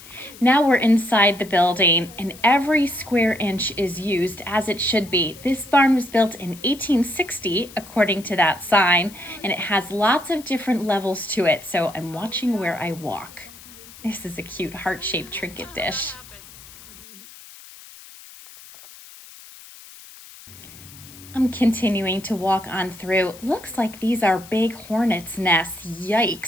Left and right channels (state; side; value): noise; left; hiss, 19 dB below the sound